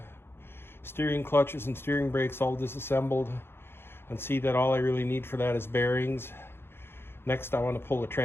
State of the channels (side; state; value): right; late; 0.11 ms